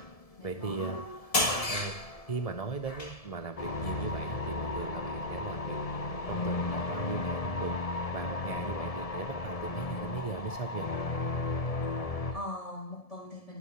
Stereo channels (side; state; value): right; late; 1.7 ms